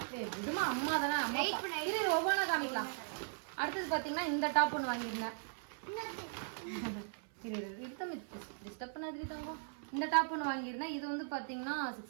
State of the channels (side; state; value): left; silent; 52 dB below the other